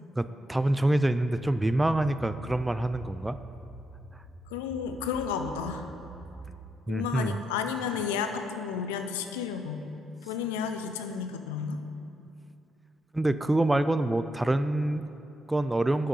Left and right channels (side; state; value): both; normal; correlation 0.80